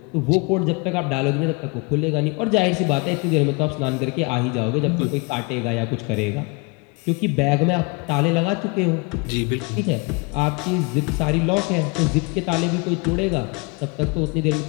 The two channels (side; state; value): right; quieter; 29.2 dB